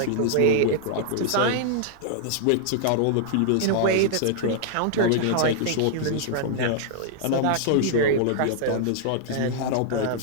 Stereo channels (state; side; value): different; both; correlation -0.01